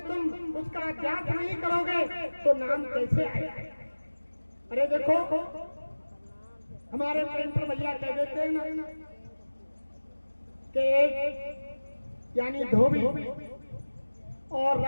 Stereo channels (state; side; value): inverted; both; correlation -1.00